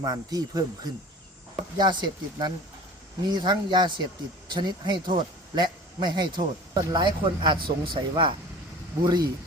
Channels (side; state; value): both; normal; correlation 0.41